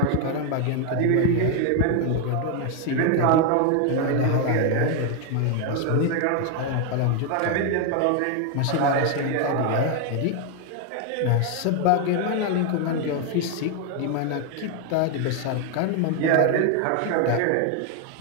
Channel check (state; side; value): different; both; correlation 0.01